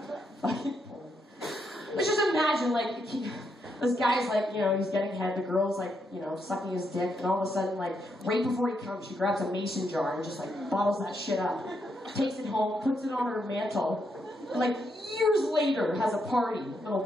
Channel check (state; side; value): normal; both; correlation 0.79